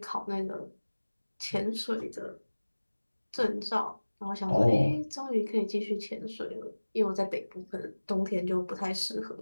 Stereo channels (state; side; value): inverted; both; correlation -1.00